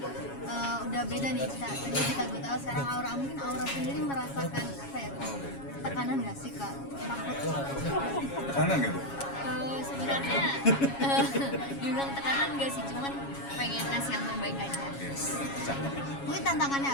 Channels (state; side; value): late; right; 7.2 ms